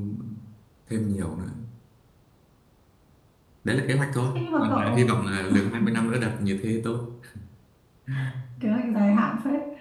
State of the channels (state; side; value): identical; both; correlation 1.00